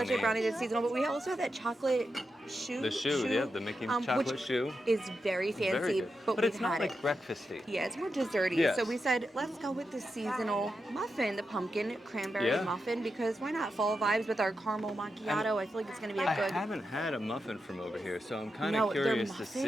that's seasonal, but we also have that chocolate shoe. The shoe, the Mickey chocolate which shoe. is very fancy, Very good. but it's we've not had like it. breakfasty. Yeah, it's more desserty. Yes. So we said, let's go with the seasonal muffin, the pumpkin cranberry muffin, because why not? Fall vibes with our caramel macchiato. I feel like it's going to be a good. I haven't had a muffin from over here, so I'm kind of curious to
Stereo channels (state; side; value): normal; both; correlation 0.88